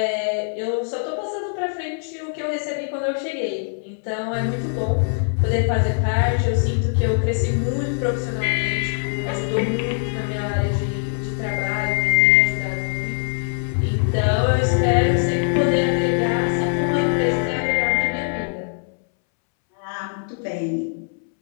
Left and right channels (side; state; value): right; silent; 64 dB below the other